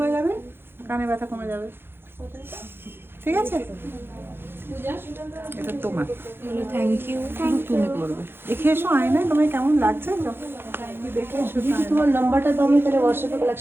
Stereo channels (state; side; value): late; left; 0.11 ms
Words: যাবে, কানের ব্যথা কমে যাবে, ঠিক আছে? এটা তোমার, থ্যাংক ইউ। শুধু তুমি করবে। দেখে এসো আয়নায় তোমায় কেমন লাগছে, দেখে এসো। তোমার নাম্বারটা তো আমি তাহলে হোয়াটসঅ্যাপে